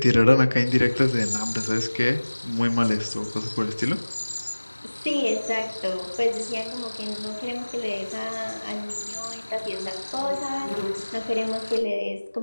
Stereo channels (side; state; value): both; inverted; correlation -1.00